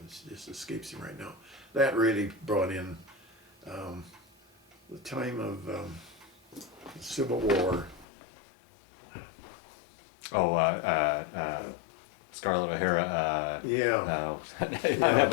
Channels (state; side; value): drops out; right; at 8.1 s